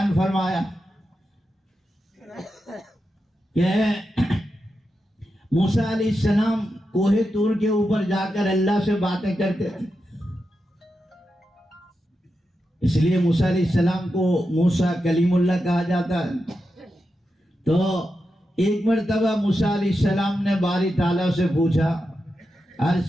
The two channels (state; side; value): normal; both; correlation 0.88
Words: فرمایا کہ موسیٰ علیہ السلام کوہ طور کے اوپر جا کر اللہ سے باتیں کرتے تھے، اس لیے موسیٰ علیہ السلام کو موسیٰ کلیم اللہ کہا جاتا ہے۔ تو ایک مرتبہ موسیٰ علیہ السلام نے باری تعالیٰ سے پوچھا،